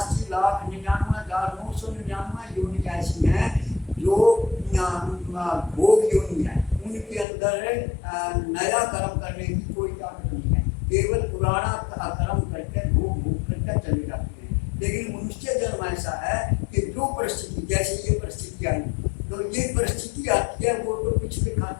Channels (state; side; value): drops out; right; at 7.2 s